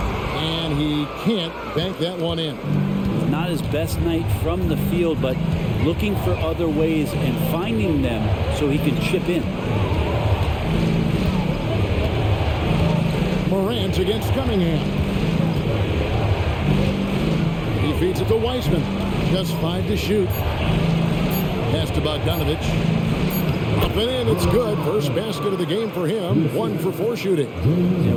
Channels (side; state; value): both; identical; correlation 1.00